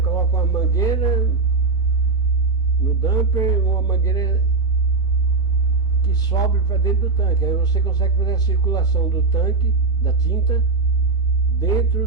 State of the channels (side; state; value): left; quieter; 4.0 dB